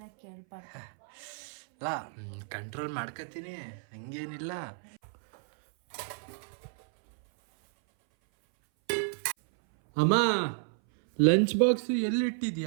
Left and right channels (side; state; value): left; silent; 57 dB below the other